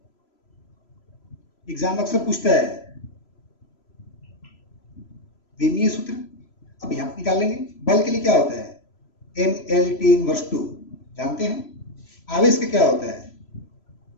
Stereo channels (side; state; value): right; late; 3.0 ms